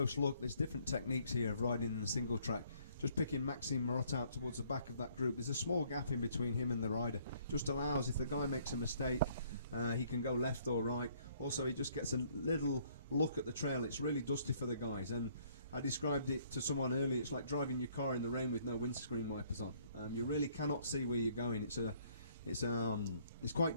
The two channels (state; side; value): inverted; both; correlation -0.63